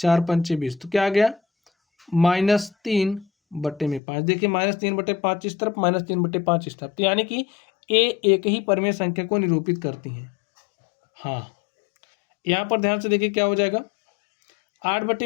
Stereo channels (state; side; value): drops out; right; at 4.0 s